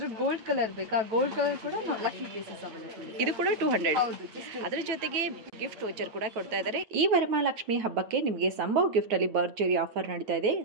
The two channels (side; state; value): left; late; 9.1 ms